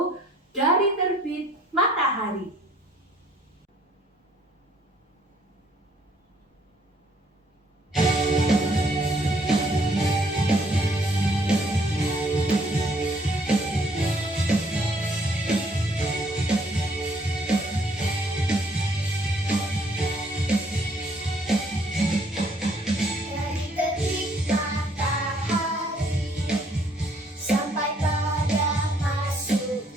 Dari Terbit Matahari.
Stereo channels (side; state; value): both; normal; correlation 0.64